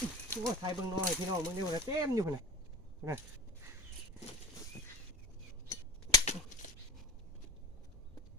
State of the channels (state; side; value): normal; both; correlation 0.32